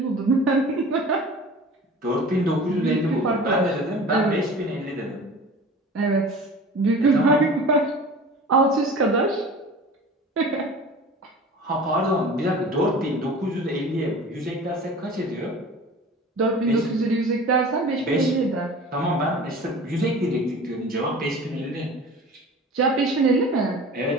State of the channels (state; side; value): normal; both; correlation 0.40